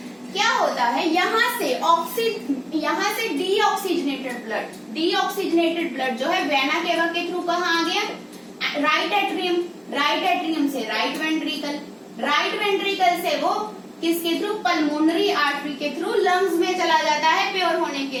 क्या होता है। यहाँ से डीऑक्सीजनेटेड ब्लड जो है वैना केवा के थ्रू कहाँ आ गया? Right atrium. राइट एट्रियम से राइट वेंट्रिकल। राइट वेंट्रिकल से वो किसके थ्रू? पल्मोनरी आर्टरी के थ्रू लंग्स में चला जाता है प्योर होने के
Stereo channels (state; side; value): identical; both; correlation 1.00